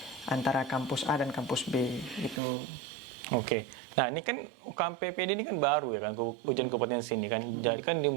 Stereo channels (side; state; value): left; drops out; at 2.4 s